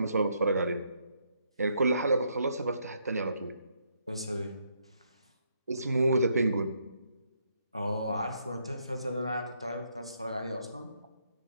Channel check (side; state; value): both; inverted; correlation -0.74